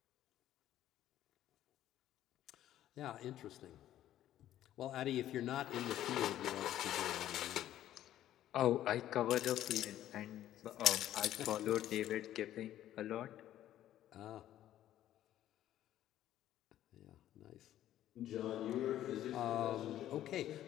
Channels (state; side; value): quieter; right; 12.5 dB